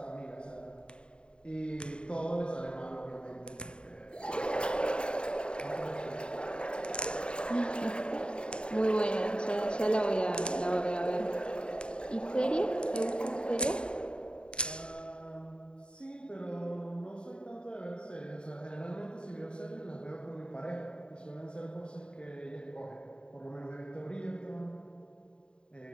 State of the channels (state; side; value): late; right; 0.052 ms